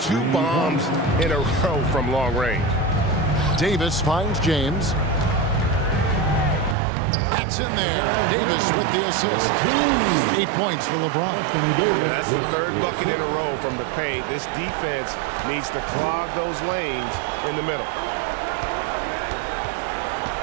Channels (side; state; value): left; drops out; at 6.8 s